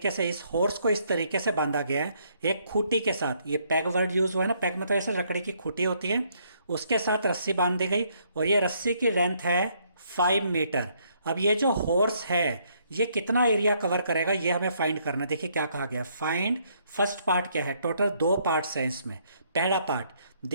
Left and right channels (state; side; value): inverted; both; correlation -0.70